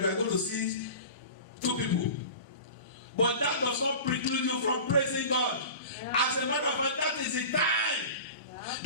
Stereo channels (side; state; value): both; inverted; correlation -0.35